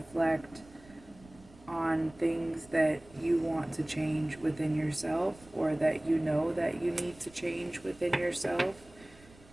on things that you want to change within yourself, or that you know that you need to change within yourself.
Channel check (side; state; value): right; noise; rumble, 24 dB below the sound